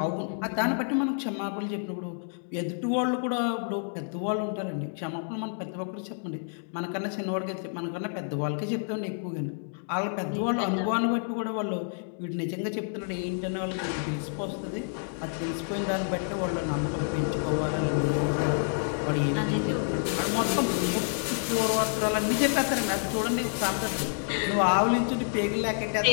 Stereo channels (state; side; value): silent; right; digital silence